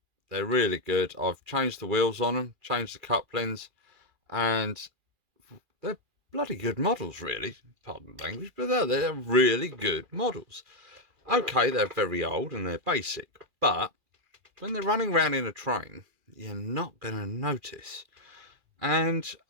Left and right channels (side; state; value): left; late; 2.4 ms